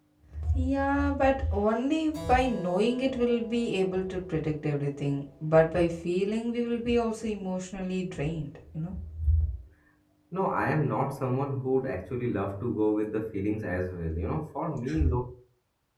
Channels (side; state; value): both; identical; correlation 1.00